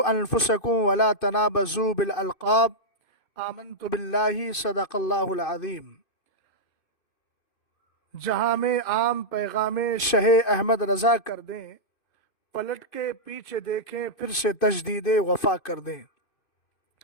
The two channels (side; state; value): right; late; 2.6 ms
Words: انفسکم ولا تنابزوا بالالقاب، آمنت باللہ، صدق اللہ العظیم۔ جہاں میں عام پیغام شہ احمد رضا کر دیں، پلٹ کے پیچھے دیکھیں پھر سے تجدید وفا کر دیں۔